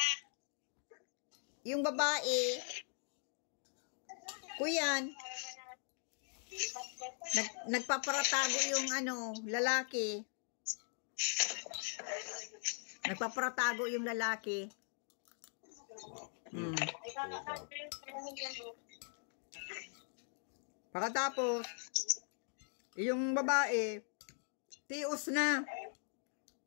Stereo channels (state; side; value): silent; right; 51 dB below the other